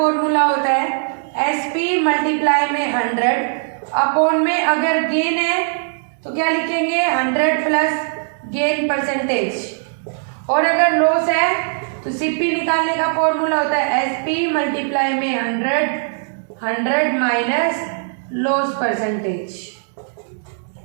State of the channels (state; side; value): silent; left; digital silence